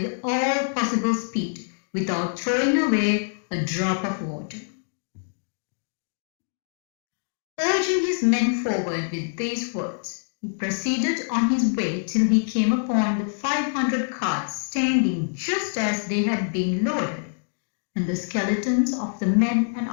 all possible speed without throwing away a drop of water. Urging his men forward with these words, he proceeded on his way till he came upon the 500 carts standing just as they had been loaded, and the skeletons of the men and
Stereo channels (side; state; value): right; silent; digital silence